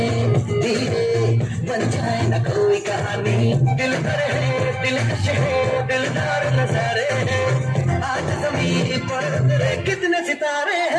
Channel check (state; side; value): identical; both; correlation 1.00